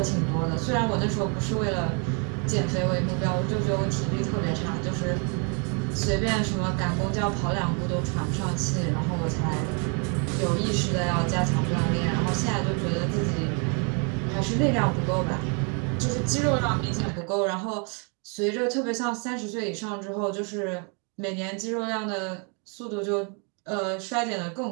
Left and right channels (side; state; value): left; quieter; 36.8 dB